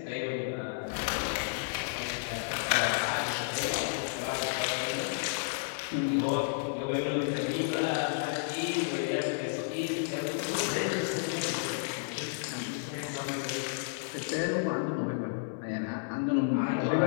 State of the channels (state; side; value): silent; right; digital silence